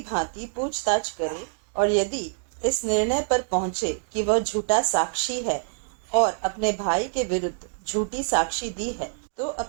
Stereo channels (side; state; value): left; silent; digital silence